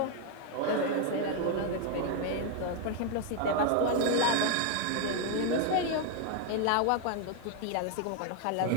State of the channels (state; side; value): different; both; correlation 0.00